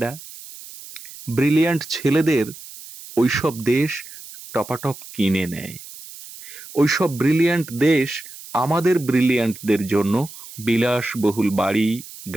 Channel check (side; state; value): right; noise; hiss, 16 dB below the sound